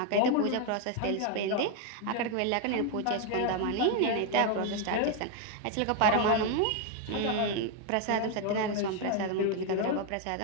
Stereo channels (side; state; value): both; different; correlation 0.01